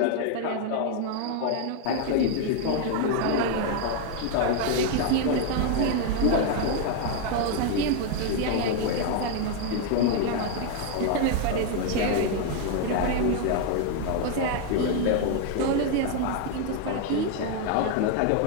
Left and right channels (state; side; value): different; both; correlation 0.01